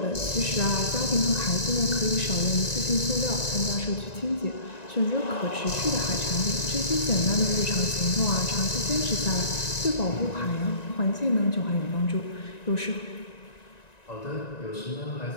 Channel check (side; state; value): right; late; 1.9 ms